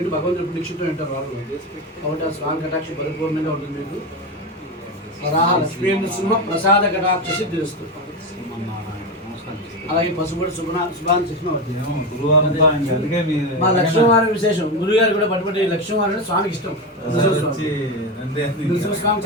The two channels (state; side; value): normal; both; correlation 0.17